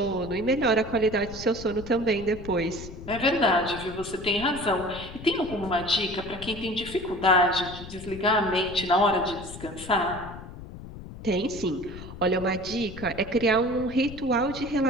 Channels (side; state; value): left; noise; rumble, 13 dB below the sound